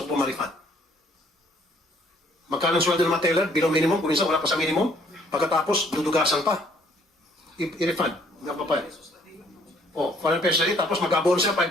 ko po ma-refund. Magkano ang sweldo ng mga teller? Below minimum, kung minsan wala pa sa minimum. Pagkatapos, dudugasan pa. I-refund. Nga pa pa. $400 na rin, tapos mag-abono siya,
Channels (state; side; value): normal; both; correlation 0.62